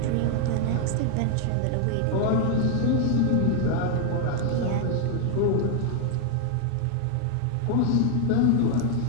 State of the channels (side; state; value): both; different; correlation 0.00